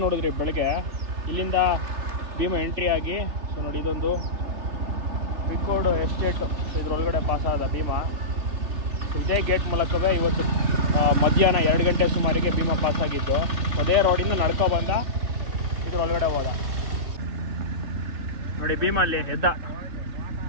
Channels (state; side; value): late; left; 3.1 ms